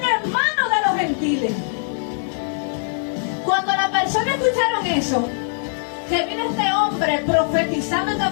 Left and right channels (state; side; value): silent; right; digital silence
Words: en manos de los gentiles. Cuando las personas escucharon eso, que vino este hombre profetizando esta